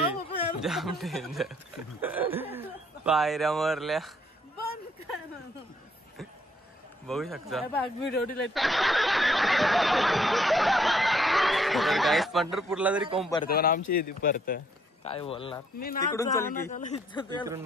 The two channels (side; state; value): both; normal; correlation 0.67